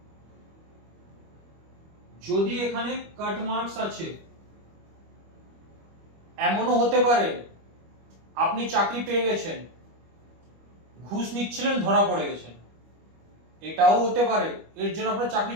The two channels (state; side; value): late; left; 25 ms